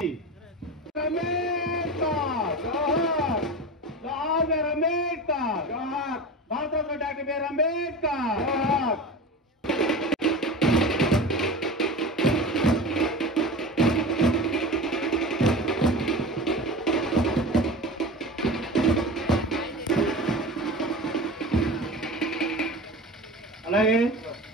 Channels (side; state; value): both; normal; correlation 0.31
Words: భారతరత్న డాక్టర్ బిఆర్ అంబేద్కర్. అలాగే